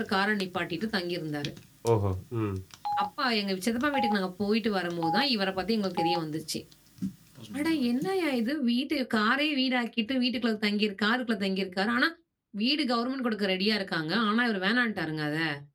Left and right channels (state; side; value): identical; both; correlation 1.00